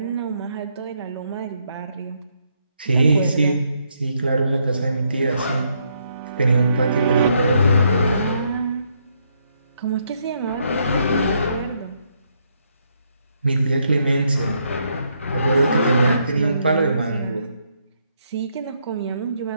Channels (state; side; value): inverted; both; correlation -0.75